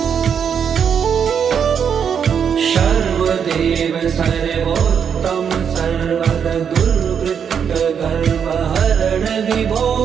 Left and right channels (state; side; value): quieter; left; 7.5 dB